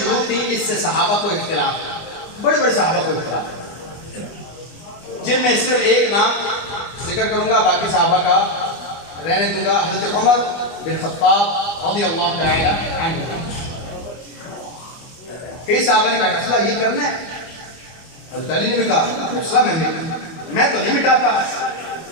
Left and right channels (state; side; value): late; right; 24 ms